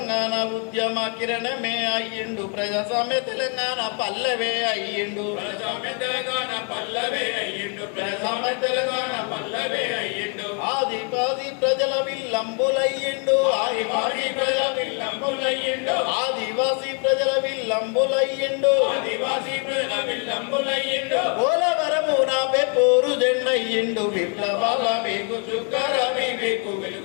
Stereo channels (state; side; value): quieter; right; 39.5 dB